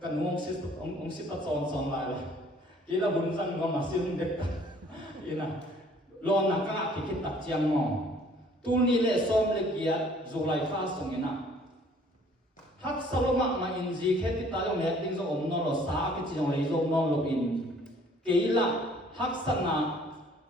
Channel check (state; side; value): normal; both; correlation 0.57